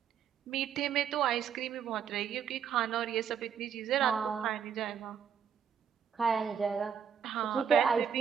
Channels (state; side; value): quieter; left; 7.7 dB